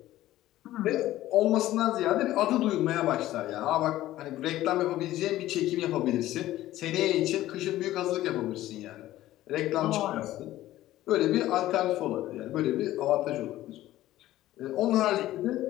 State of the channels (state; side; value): quieter; right; 14.9 dB